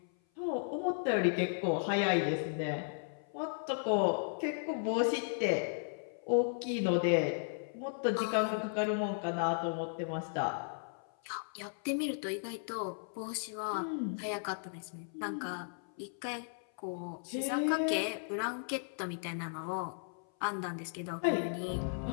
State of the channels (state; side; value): silent; right; 54 dB below the other